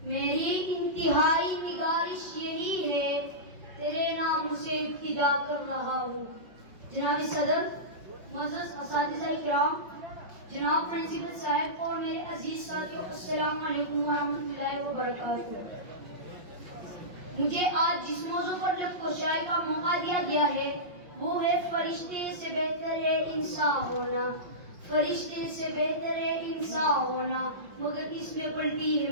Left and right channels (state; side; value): late; left; 5.5 ms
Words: میری انتہائی نگارش یہی ہے، تیرے نام سے ابتدا کر رہا ہوں۔ جناب صدر، معزز اساتذہ کرام، جناب پرنسپل صاحب اور میرے عزیز ساتھیوں، السلام علیکم ورحمۃ اللہ وبرکاتہ۔ مجھے آج جس موضوع پر لفظ کشائی کا موقع دیا گیا ہے وہ ہے فرشتے سے بہتر ہے انسان ہونا، فرشتے سے بہتر ہے انسان ہونا، مگر اس میں پڑتی ہے